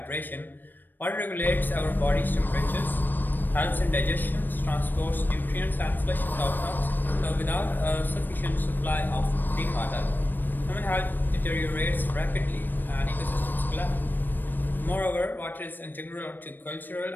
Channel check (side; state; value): right; late; 0.092 ms